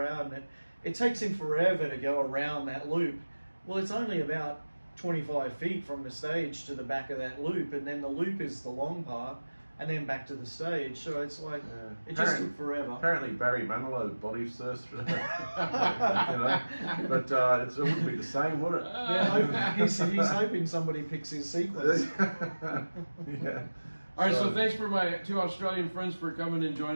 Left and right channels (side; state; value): both; inverted; correlation -1.00